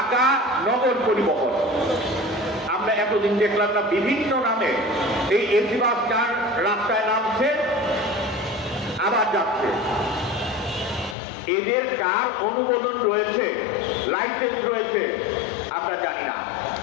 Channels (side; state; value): right; drops out; at 11.2 s